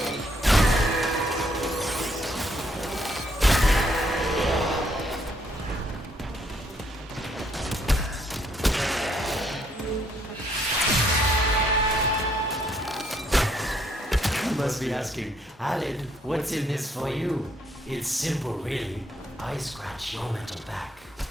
Must be asking, Alid, what's in this for you? It's simple, really. I scratch your mental back,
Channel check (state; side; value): normal; both; correlation 0.70